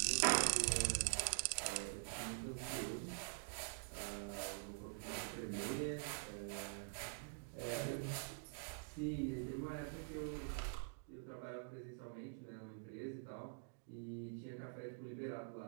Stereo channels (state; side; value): silent; left; digital silence